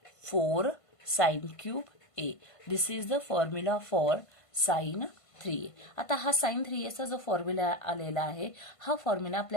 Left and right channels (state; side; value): late; right; 1.5 ms